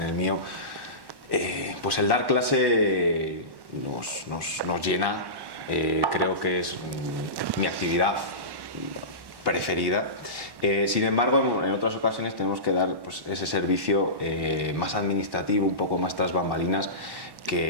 el mío, pues el dar clase nos llena, creo que es mi actividad preferida. Sin embargo, en otras ocasiones tenemos que dar pues, ese servicio más administrativo, un poco más tras bambalinas,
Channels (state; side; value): late; left; 1.1 ms